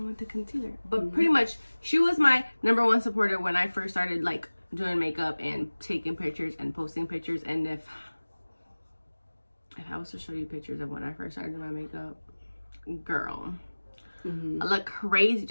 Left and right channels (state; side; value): inverted; both; correlation -1.00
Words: with the concealer. But pretty much, she was my #1 supporter when I first started like doing makeup and taking pictures and posting pictures. And if I was to show you pictures of when I first started doing my makeup, girl, I look crazy.